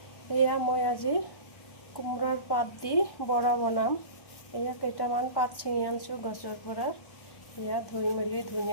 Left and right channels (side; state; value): right; late; 1.1 ms